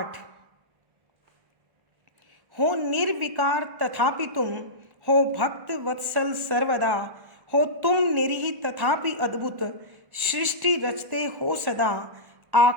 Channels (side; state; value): left; late; 1.4 ms